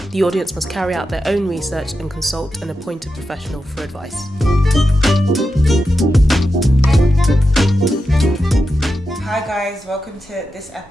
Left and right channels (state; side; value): normal; both; correlation 0.89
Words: The audience must carry out their own research and consult an appointed professional for advice. Hi guys, welcome to this